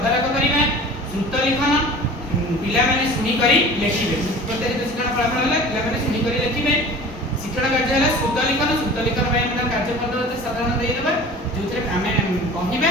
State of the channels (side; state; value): both; normal; correlation 0.41